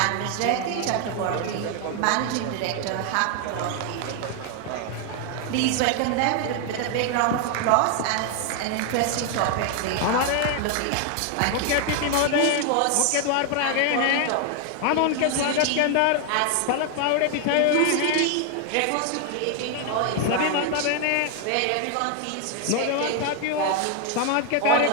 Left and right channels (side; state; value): both; different; correlation 0.00